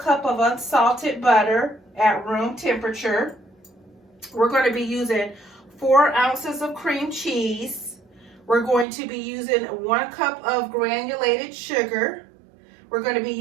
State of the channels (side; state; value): left; drops out; at 8.8 s